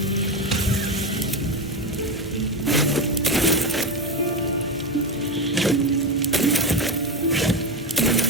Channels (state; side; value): normal; both; correlation 0.15